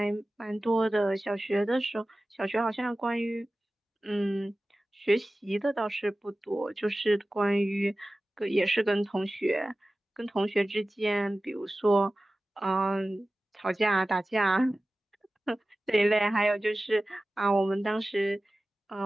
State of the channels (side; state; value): both; normal; correlation 0.96